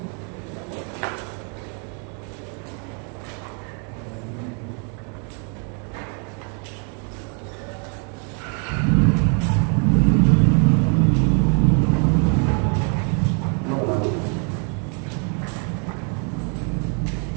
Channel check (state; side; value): quieter; left; 39.7 dB